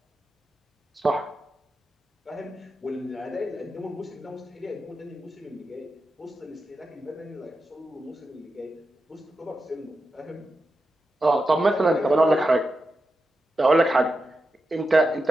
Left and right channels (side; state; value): both; normal; correlation 0.89